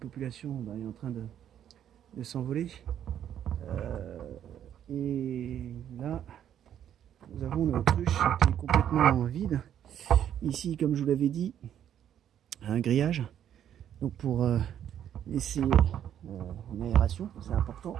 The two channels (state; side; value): quieter; left; 10.0 dB